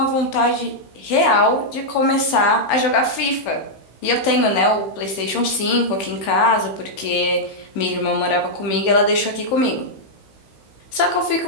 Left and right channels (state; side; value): late; right; 15 ms